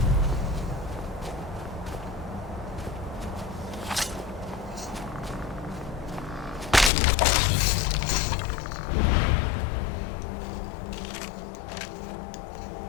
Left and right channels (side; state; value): right; drops out; at 6.9 s